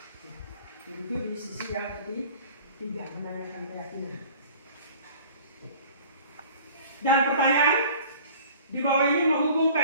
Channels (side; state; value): both; inverted; correlation -0.47